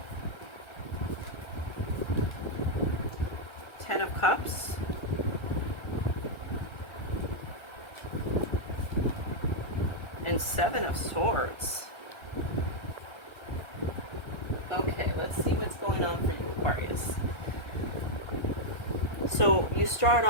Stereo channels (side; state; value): right; late; 1.3 ms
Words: Ten of Cups, and Seven of Swords. Okay, let's see what's going on for you, Aquarius. So you start